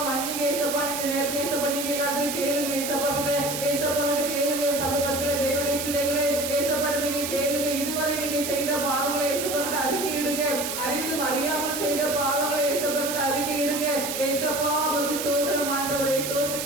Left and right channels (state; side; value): noise; right; hiss, 4 dB below the sound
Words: மன்னிக்க இயேசப்பா. இந்த நேரத்தில் இயேசப்பா நீங்க எல்லாத்தையும் கேளுங்க இயேசப்பா கிட்ட கேளுங்க. சபை மக்களே தேவனுடைய பிள்ளைகளே இயேசப்பா நீங்க கேளுங்க. இதுவரை நீங்க செய்த பாவங்களை இயேசப்பா கிட்ட அறிக்கையிடுங்க. அறிந்தும் அறியாமல் செய்த பாவங்களை இயேசப்பா கிட்ட அறிக்கையிடுங்க. இயேசப்பா உமக்கு ஸ்தோத்திரம் ஆண்டவரே